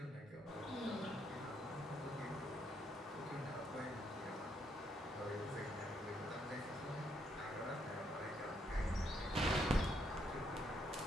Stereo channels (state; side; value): normal; both; correlation 0.74